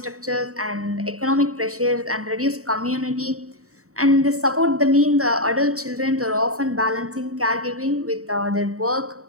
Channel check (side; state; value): left; late; 0.65 ms